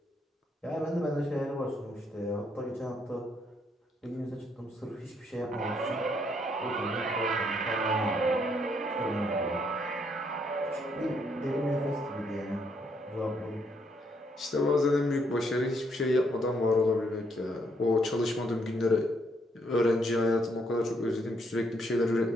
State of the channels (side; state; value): both; normal; correlation 0.72